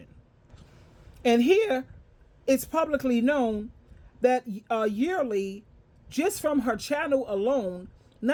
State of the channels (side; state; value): both; identical; correlation 1.00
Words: And here, it's publicly known that yearly, just from her channel alone,